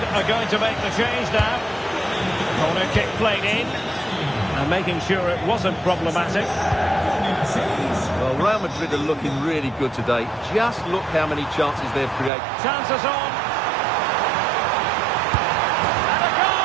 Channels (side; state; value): left; drops out; at 12.3 s